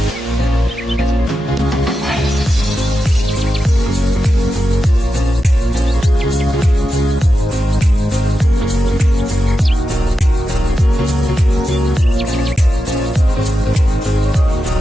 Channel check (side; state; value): both; normal; correlation 0.89